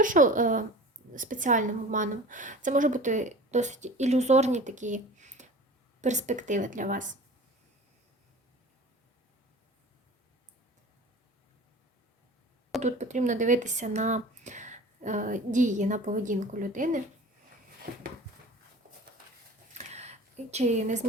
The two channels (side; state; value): both; normal; correlation 0.40